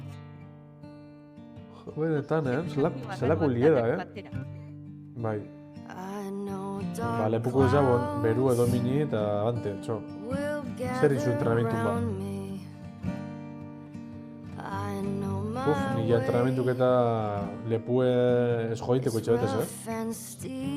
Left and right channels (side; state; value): both; identical; correlation 1.00